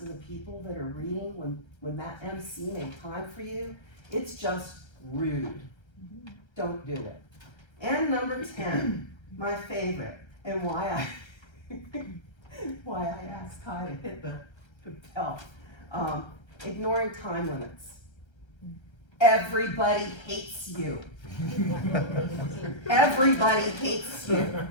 the people that are reading when that MC made time for you, it's just rude. Don't do it. And number 10, my favorite, and why I asked Kai to hit the bell. Ignoring time limits. Everybody hates you. Everybody hates you.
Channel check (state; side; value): late; right; 1.3 ms